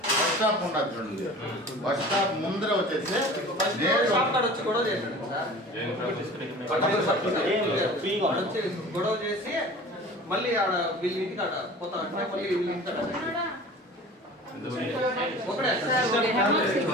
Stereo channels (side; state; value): both; normal; correlation 0.41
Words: బస్ స్టాప్ ఉండదు చూడండి. బస్ స్టాప్ ముందర వచ్చేసి గొడవ చేసి మళ్ళీ ఆడ వీళ్ళ ఇంటికి ఆడ పోతా అంటే మళ్ళీ వీళ్ళ ఇంటికి ఒకటే